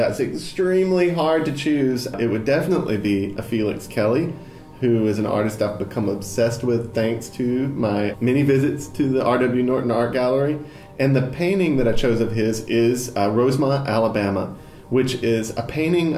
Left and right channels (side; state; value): both; identical; correlation 1.00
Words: extremely hard to choose. It would definitely be a Felix Kelly, who is an artist I've become obsessed with thanks to my many visits to the R.W. Norton Art Gallery. And the painting that I chose of his is Rosemont, Alabama, which is a painting